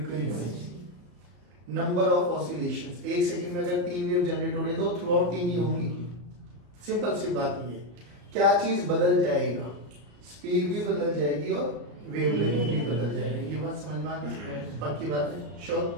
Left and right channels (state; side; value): late; left; 35 ms